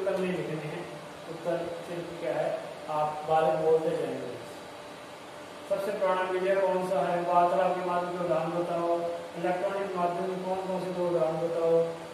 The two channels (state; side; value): identical; both; correlation 1.00